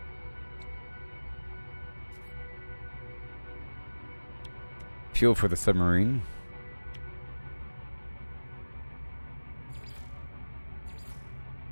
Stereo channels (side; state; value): both; inverted; correlation -1.00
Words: Fuel for the submarine.